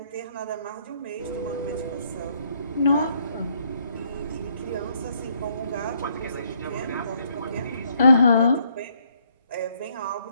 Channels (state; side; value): inverted; both; correlation -0.70